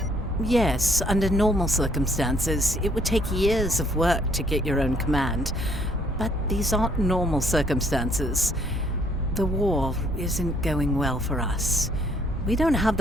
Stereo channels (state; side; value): normal; both; correlation 0.65